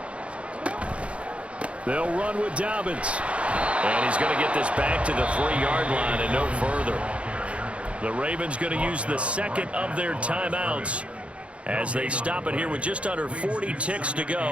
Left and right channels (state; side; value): late; left; 0.061 ms